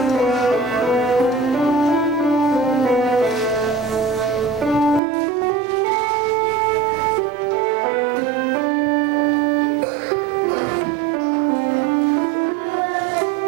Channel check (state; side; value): drops out; left; at 5.0 s